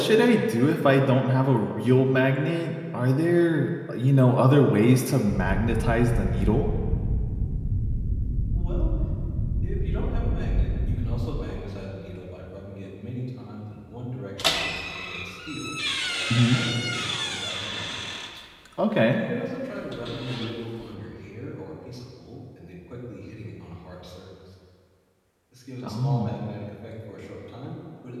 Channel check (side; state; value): both; identical; correlation 1.00